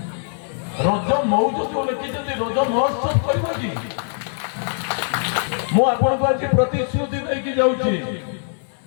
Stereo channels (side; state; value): right; silent; digital silence